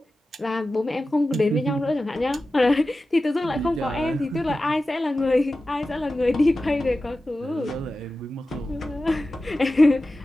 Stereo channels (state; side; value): normal; both; correlation 0.94